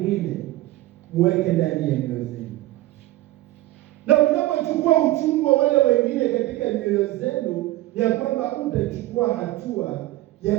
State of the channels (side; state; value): left; quieter; 17.0 dB